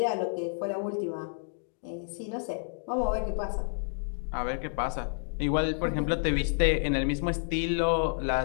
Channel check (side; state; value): right; silent; digital silence